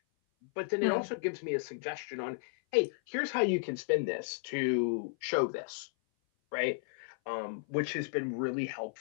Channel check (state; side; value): silent; right; 55 dB below the other